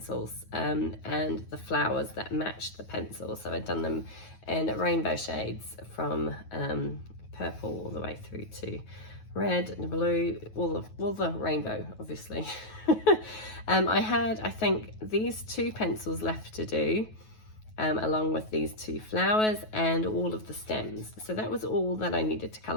and the flowers that matched the pencils. So I'd done them in rainbow shades from purple all the way through to red and blue, all the rainbow, obviously. I had, I think, these 2 pencils left to do, along with these 2 flowers and all of the stems. So that was all that I needed to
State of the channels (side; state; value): right; late; 9.3 ms